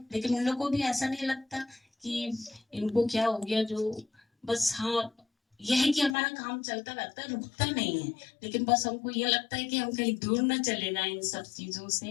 लेकिन उन लोगों को भी ऐसा नहीं लगता कि इनको क्या हो गया, जो बस हाँ यह है कि हमारा काम चलता रहता है, रुकता नहीं है, लेकिन बस हमको ये लगता है कि हम कहीं दूर ना चले जाएं इन सब चीजों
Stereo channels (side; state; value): right; drops out; at 6.2 s